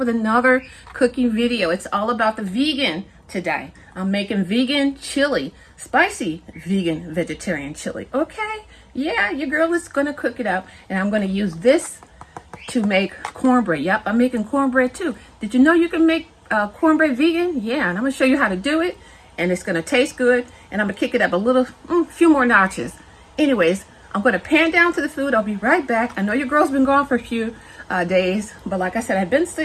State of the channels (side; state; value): both; identical; correlation 1.00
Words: another cooking video. It's all about the vegan today. I'm making vegan chili, spicy vegan vegetarian chili. Okay, yeah, your girl is gonna cook it up, and I'm gonna use this to make cornbread. Yep, I'm making cornbread too. Did you know you can make cornbread vegan? Yeah, and I'm gonna show you how to do it, and it's gonna taste good, and I'm gonna kick it up a little, few more notches. Anyways, I'm gonna pan down to the food. I'll be right back. I know your girl's been gone for a few days, but like I said, I've been